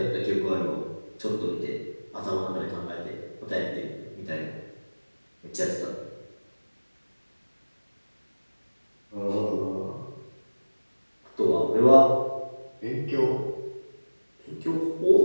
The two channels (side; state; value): both; inverted; correlation -1.00